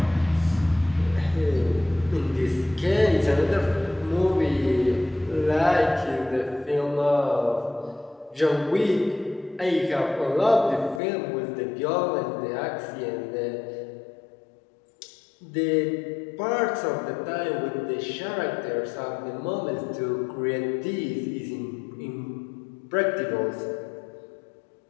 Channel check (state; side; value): drops out; right; at 11.0 s